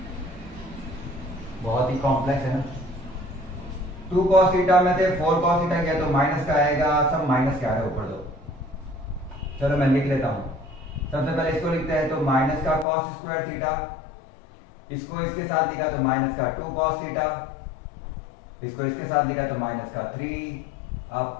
बहुत ही कॉम्प्लेक्स है ना। 2 cos थीटा में से 4 cos थीटा किया तो माइनस का आएगा, सब माइनस के आ रहे ऊपर दो। चलो मैं लिख लेता हूं, सबसे पहले इसको लिखते हैं, तो माइनस का cos स्क्वायर थीटा, इसको इसके साथ लिखा तो माइनस का 2 cos थीटा, इसको इसके साथ लिखा तो माइनस का 3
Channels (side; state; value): right; drops out; at 12.9 s